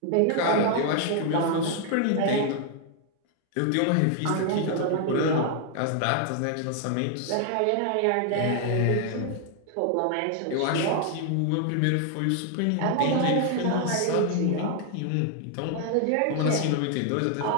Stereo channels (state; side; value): different; both; correlation 0.00